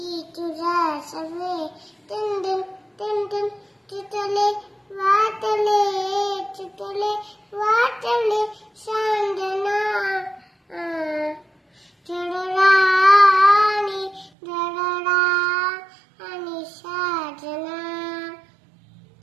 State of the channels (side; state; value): left; drops out; at 14.3 s